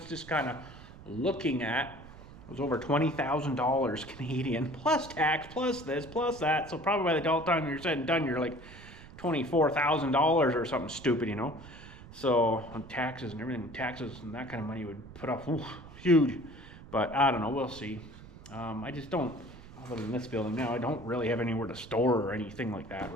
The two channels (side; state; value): right; noise; rumble, 17 dB below the sound